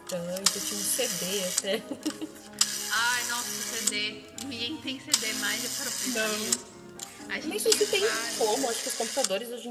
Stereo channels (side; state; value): both; identical; correlation 1.00